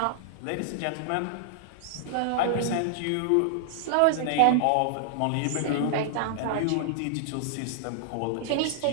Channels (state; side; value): different; both; correlation -0.01